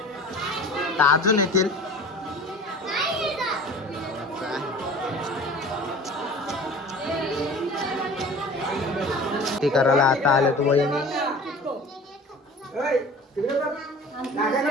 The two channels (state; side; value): normal; both; correlation 0.42